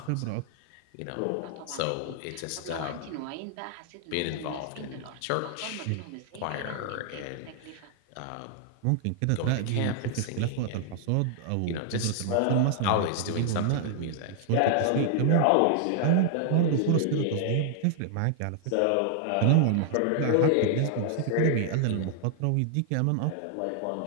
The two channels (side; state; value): both; different; correlation 0.00